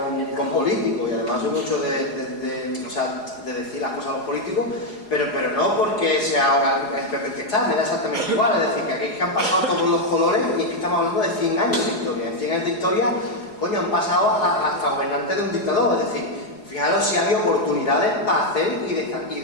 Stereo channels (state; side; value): late; right; 4.8 ms